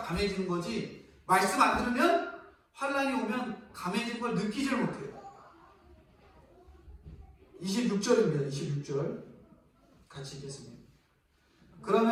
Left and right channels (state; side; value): identical; both; correlation 1.00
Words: 거지, 말씀 안 들으면 환난이 오면 감해진 걸 느끼질 못해요. 26절입니다. 26절 같이 읽겠습니다.